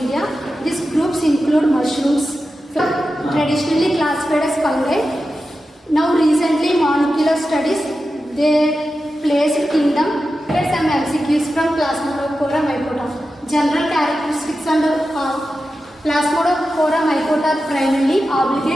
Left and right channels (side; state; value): both; normal; correlation 0.91